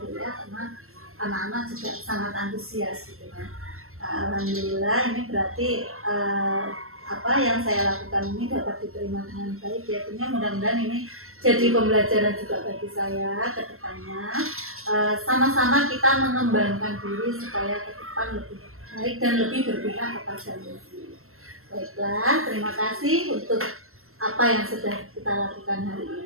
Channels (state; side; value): late; left; 0.62 ms